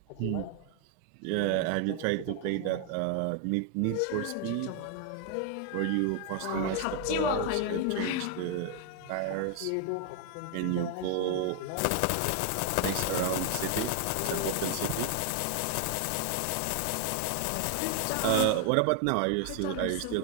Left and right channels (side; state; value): both; different; correlation 0.00